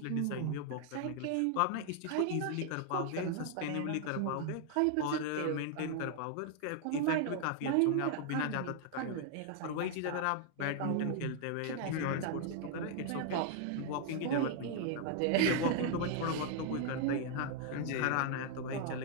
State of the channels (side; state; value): both; different; correlation 0.00